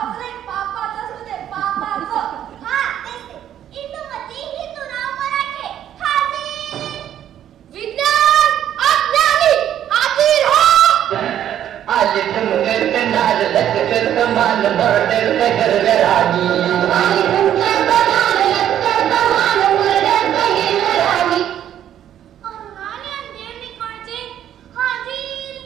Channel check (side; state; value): left; quieter; 10.7 dB